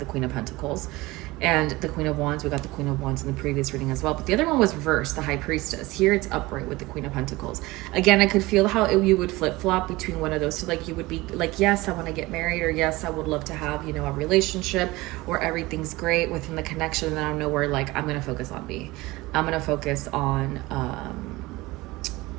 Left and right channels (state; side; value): quieter; left; 20.5 dB